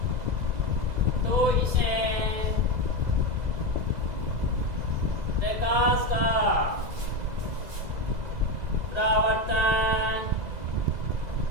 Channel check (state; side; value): late; left; 2.0 ms